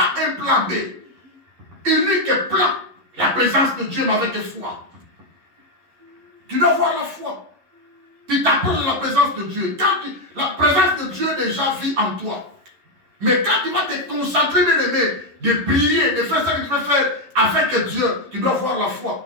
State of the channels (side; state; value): left; late; 11 ms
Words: un plan B. Unique plan. La présence de Dieu, mais avec foi. Tu dois avoir la foi. Tu t'approches de la présence de Dieu. La présence de Dieu déjà vit en toi. Mais quand tu vas te concentrer, bien aimé, de prier, de faire ce que tu veux faire avec Dieu, tu dois avoir la